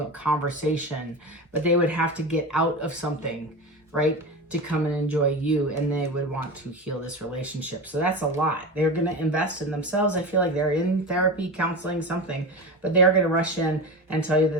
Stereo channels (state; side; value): normal; both; correlation 0.26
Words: conversation. But they would have to get out of something, right, to come and enjoy you, and they would want to heal this relationship. So that's a lot. They're going to invest in themselves. I feel like they're in therapy, counseling, something, but they are going to rush in and tell you